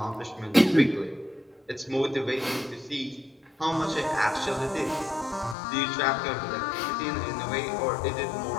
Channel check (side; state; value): right; drops out; at 5.6 s